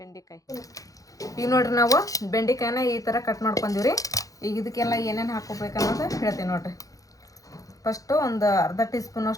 ಈಗ ನೋಡ್ರಿ ನಾವು ಬೆಂಡೆಕಾಯಿನ ಈ ಥರ ಕಟ್ ಮಾಡ್ಕೊಂಡೀವ್ರಿ ಈಗ ಇದಕ್ಕೆಲ್ಲ ಏನೇನು ಹಾಕೋಬೇಕು ಅನ್ನೋದು ಹೇಳ್ತೀನಿ ನೋಡ್ರಿ ಫಸ್ಟು ಒಂದು ಅರ್ಧ ಟೀ ಸ್ಪೂನ್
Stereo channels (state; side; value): late; right; 0.17 ms